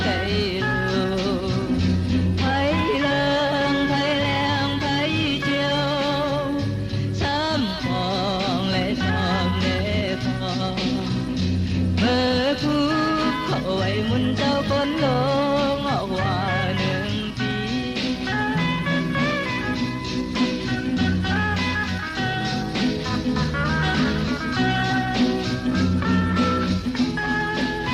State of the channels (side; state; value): both; identical; correlation 1.00